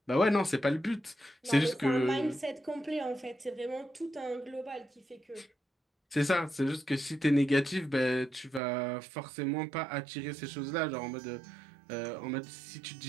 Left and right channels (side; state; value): left; drops out; at 8.6 s